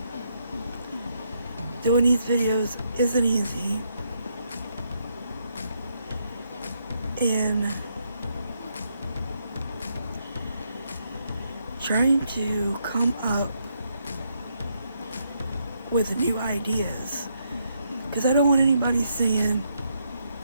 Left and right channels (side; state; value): both; inverted; correlation -0.77